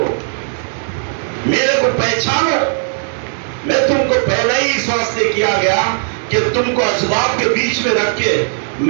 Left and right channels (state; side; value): silent; left; digital silence